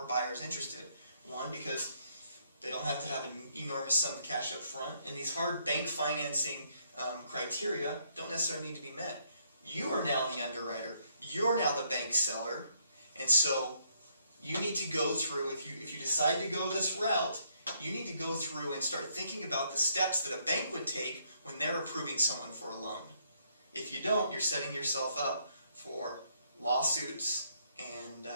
buyers interested. One, because they don't have to have an enormous sum of cash up front, and these hard bank financing criteria don't necessarily need to be met. You are now the underwriter. You're now the bank seller, and so you need to go through, if you decide to go this route, you need to go through and start thinking about the steps that a bank would take when they're approving someone for a loan. If you don't, you're setting yourself up for lawsuits, and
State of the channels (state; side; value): inverted; both; correlation -0.70